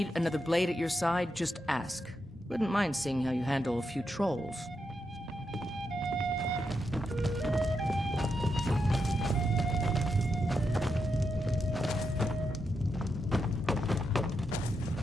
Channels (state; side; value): normal; both; correlation 0.84